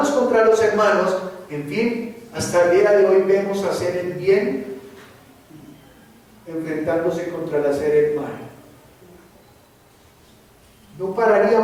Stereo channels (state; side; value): identical; both; correlation 1.00